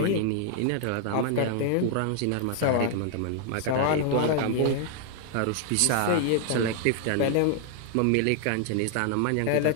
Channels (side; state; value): both; different; correlation 0.00